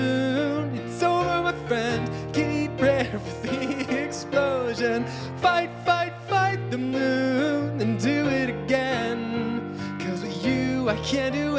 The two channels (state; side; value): identical; both; correlation 1.00